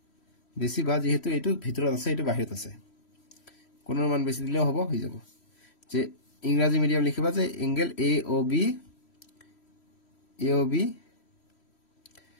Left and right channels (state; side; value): late; right; 3.1 ms